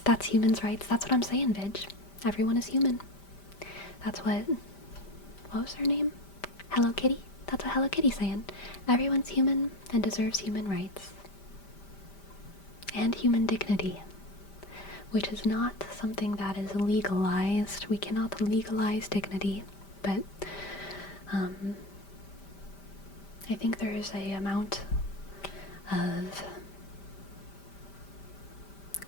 That's humans' rights. That's what I'm saying, Vidge. Everyone is human. That's what was her name? Hello Kitty? That's what Hello Kitty's saying. Everyone's human and deserves human rights. And human dignity. Which is not something that is legalized. We cannot legalize dignity. But, I think there is a amount of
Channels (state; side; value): late; right; 5.1 ms